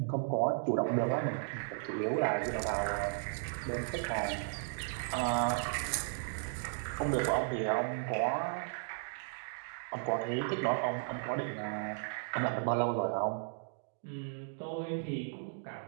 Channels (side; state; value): left; silent; digital silence